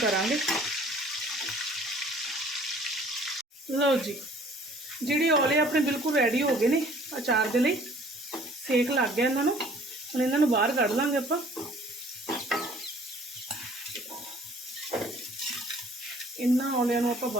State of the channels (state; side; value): normal; both; correlation 0.54